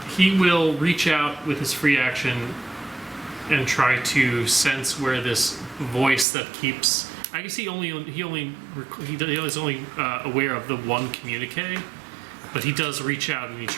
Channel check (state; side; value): drops out; left; at 6.2 s